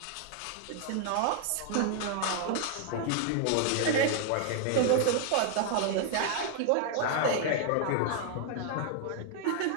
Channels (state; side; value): different; both; correlation 0.00